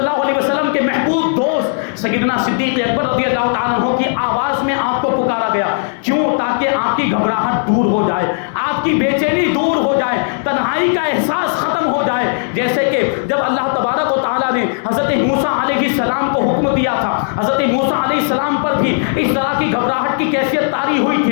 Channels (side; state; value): right; silent; digital silence